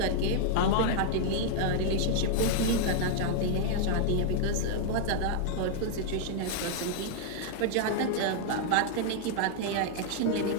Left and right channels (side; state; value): both; different; correlation -0.01